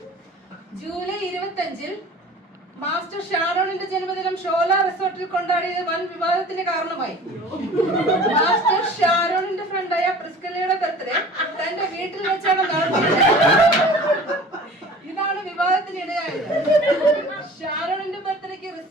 ജൂലൈ 25-ൽ മാസ്റ്റർ ഷാരോണിന്റെ ജന്മദിനം ഷോല റിസോർട്ടിൽ കൊണ്ടാടിയത് വൻ വിവാദത്തിന് കാരണമായി. മാസ്റ്റർ ഷാരോണിന്റെ ഫ്രണ്ടായ പ്രിസ്കലയുടെ ബർത്ത്ഡേ തന്റെ വീട്ടിൽ വെച്ചാണ് നടത്തിയത്. ഇതാണ് വിവാദത്തിനിടയായത്. ഷാരോണിന്റെ ബർത്ത്ഡേക്ക്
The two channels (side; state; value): both; normal; correlation 0.43